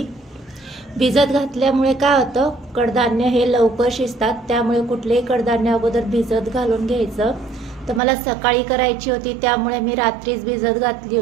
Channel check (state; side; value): drops out; left; at 8.0 s